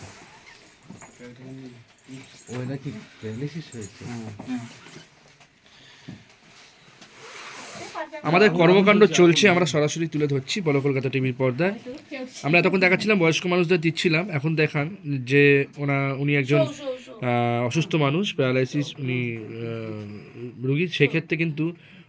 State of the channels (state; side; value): identical; both; correlation 1.00